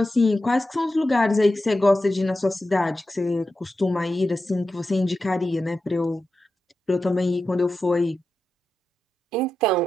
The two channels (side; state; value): both; normal; correlation 0.90